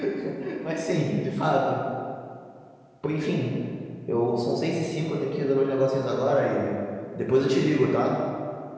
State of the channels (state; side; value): identical; both; correlation 1.00